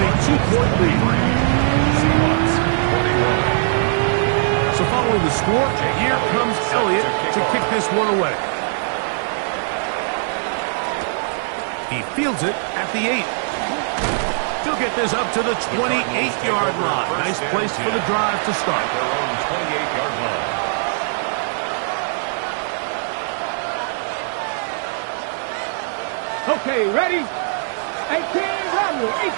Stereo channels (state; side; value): silent; left; digital silence